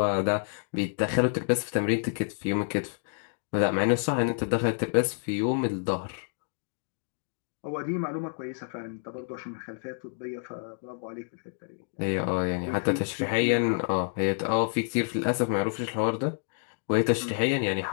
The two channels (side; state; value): right; silent; digital silence